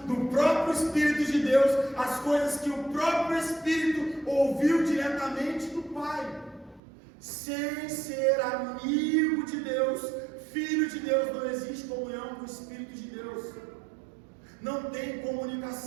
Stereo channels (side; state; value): left; drops out; at 6.8 s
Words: do próprio Espírito de Deus, as coisas que o próprio Espírito ouviu diretamente do Pai. Sem ser amigo de Deus, filho de Deus, não existe comunhão com o Espírito de Deus. Não tem